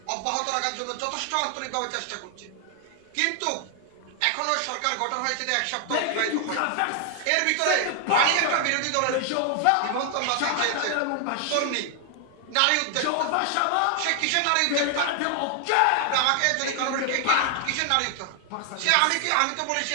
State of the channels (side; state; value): both; different; correlation 0.00